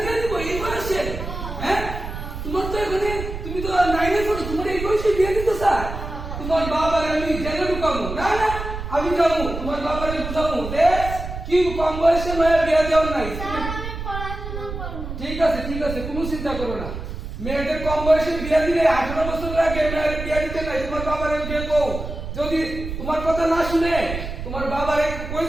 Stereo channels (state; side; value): noise; right; rumble, 7 dB below the sound